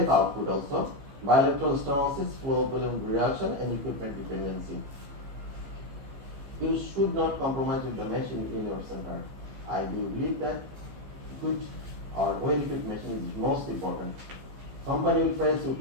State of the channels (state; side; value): late; left; 15 ms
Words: output also, bilateral stenosis, flow volume reduction, and equipment dependency. You should not compromise with the machine in your center. I do believe that good or well-equipped machine is most important. Company will price you,